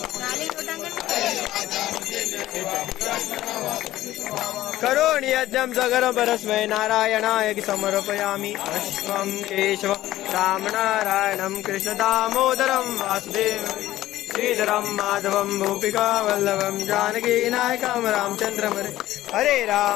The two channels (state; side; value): quieter; right; 14.9 dB